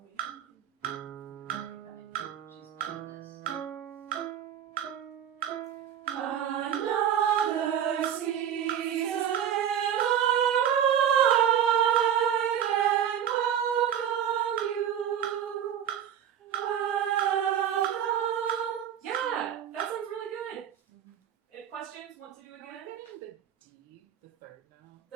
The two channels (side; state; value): left; quieter; 9.4 dB